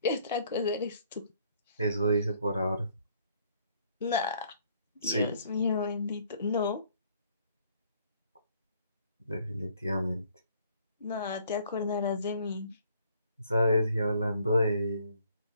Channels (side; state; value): both; inverted; correlation -0.63